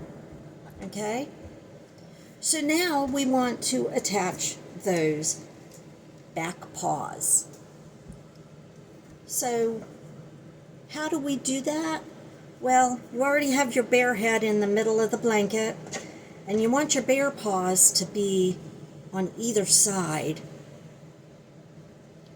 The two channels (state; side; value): identical; both; correlation 1.00